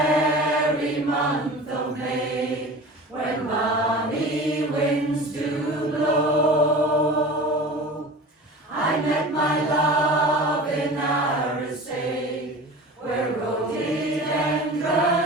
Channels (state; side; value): normal; both; correlation 0.36